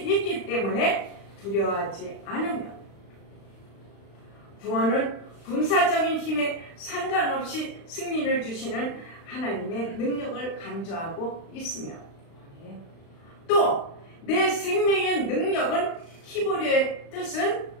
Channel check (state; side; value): late; right; 35 ms